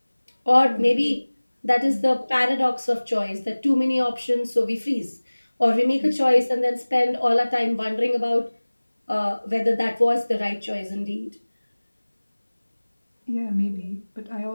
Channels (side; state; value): both; inverted; correlation -1.00